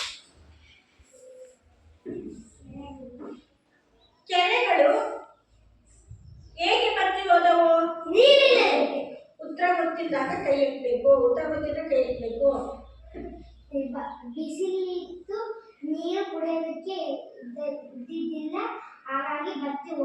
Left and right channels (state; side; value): identical; both; correlation 1.00